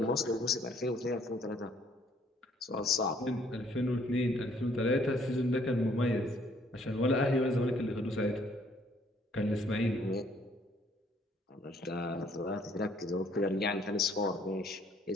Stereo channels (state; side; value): normal; both; correlation 0.63